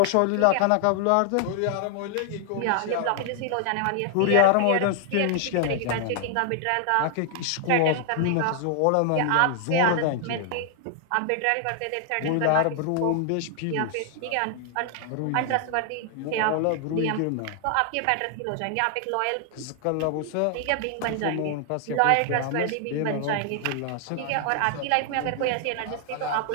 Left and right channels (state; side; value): different; both; correlation 0.00